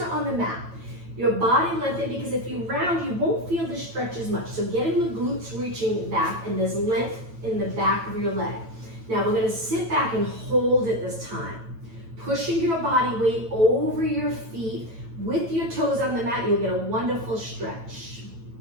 on the mat. Your body lengthened, because if you round, you won't feel the stretch as much. So getting the glutes reaching back, and there's length in the back of your leg. Now we're gonna sit back and hold it this time. Pushing your body weight over your feet with your toes on the mat, you'll get a wonderful stretch.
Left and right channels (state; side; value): late; left; 9.1 ms